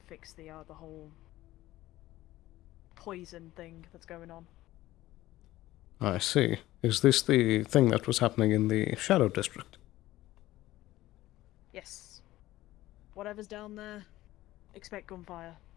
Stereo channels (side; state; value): right; quieter; 16.1 dB